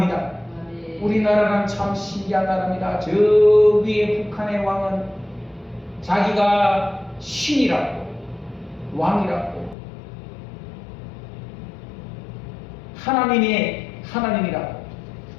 우리나라는 참 신기한 나라입니다. 저 위에 북한의 왕은 자기가 신이라고, 왕이라고, 하나님이라고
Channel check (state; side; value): drops out; right; at 9.8 s